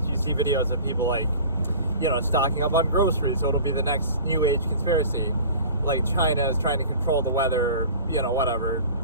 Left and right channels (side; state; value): both; inverted; correlation -0.41